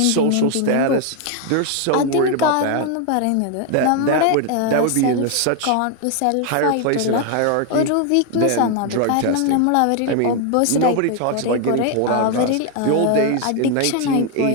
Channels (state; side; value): different; both; correlation 0.01